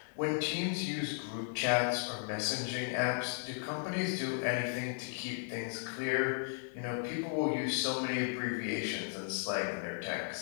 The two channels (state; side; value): silent; right; digital silence